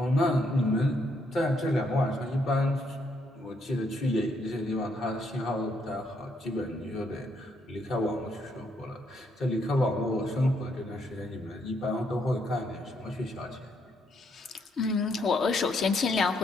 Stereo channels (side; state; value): both; normal; correlation 0.74